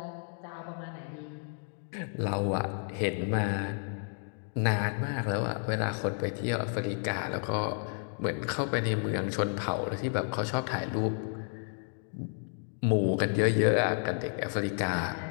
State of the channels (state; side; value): silent; right; 57 dB below the other